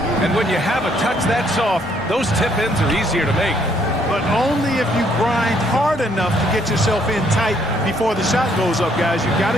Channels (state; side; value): normal; both; correlation 0.68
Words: And when you have a touch that soft, those tip-ins are easier to make. But only if you grind hard enough to get yourself in tight before the shot goes up, guys. You've got